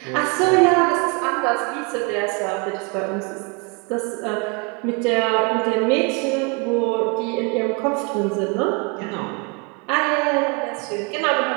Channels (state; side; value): quieter; left; 31.6 dB